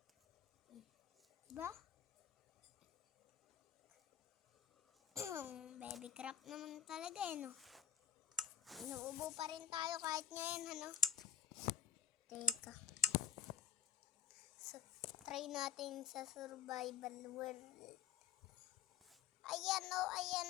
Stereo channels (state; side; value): quieter; right; 8.5 dB